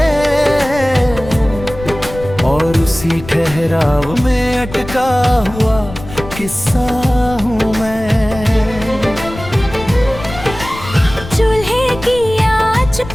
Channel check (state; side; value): noise; left; rumble, 13 dB below the sound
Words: और उसी ठहराव में अटका हुआ किस्सा हूँ मैं। चूल्हे की आंच